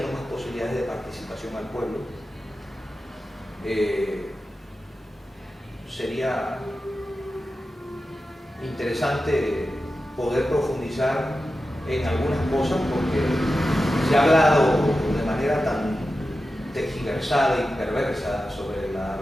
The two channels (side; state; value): both; normal; correlation 0.92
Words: más posibilidades de participación al pueblo. Sería interesante poder profundizar en algunas cosas, porque se ha hablado de manera tan tergiversada y perversa sobre la